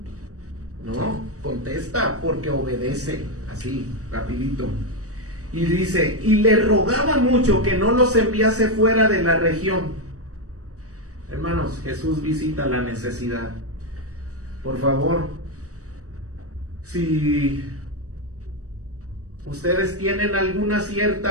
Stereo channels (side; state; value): left; late; 0.66 ms